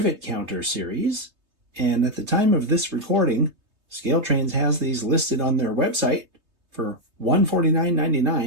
Counter series, and at the time of this recording, ScaleTrains has these listed on their website for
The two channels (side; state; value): left; late; 3.2 ms